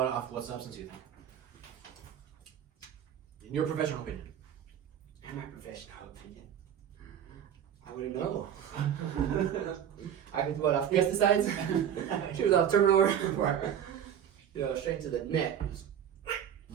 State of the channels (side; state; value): left; quieter; 9.3 dB